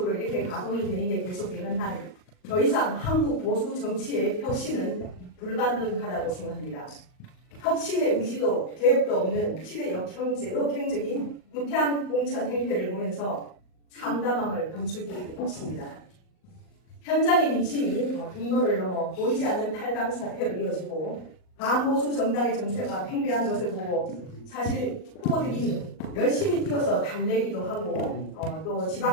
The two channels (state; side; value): late; right; 38 ms